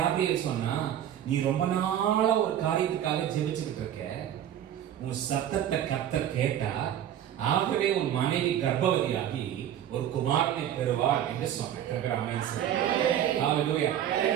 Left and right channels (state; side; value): quieter; left; 10.6 dB